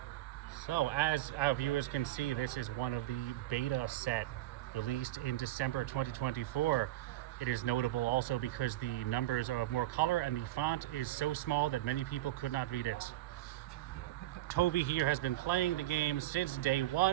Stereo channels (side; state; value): left; quieter; 15.5 dB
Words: So, as our viewers can see, this is one of the beta set released in December 2024. It is notable also because the numbers are of more color and the font is so small that many people could not read it. Toby here has been playing the game since day